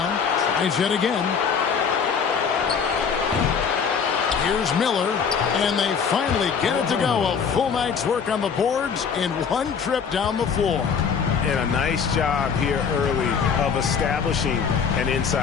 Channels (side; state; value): right; quieter; 6.4 dB